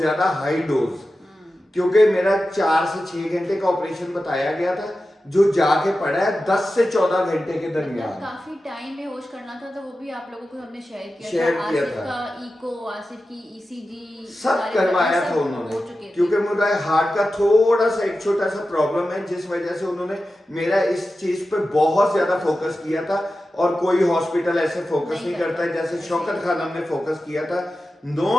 हाई डोज, क्योंकि मेरा 4 से 6 घंटे का ऑपरेशन बताया गया था, जो जाके पड़ा है 10 से 14 घंटे के दरमियान। काफी टाइम में होश करना था, तो वो भी आप लोगों को हमने शेयर किया शेयर था। था। का इको, आसिफ की ईसीजी सब करवाया था उन्होंने, क्योंकि मुझे हार्ट का थोड़ा सा एक छोटा सा प्रॉब्लम है, जिस वजह से उन्होंने मेरा इस चीज पे बहुत ज्यादा फोकस किया था। और कोई हॉस्पिटल ऐसे फोकस नहीं करता है जैसे शौकत खानम ने फोकस किया था।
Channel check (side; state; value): both; normal; correlation 0.93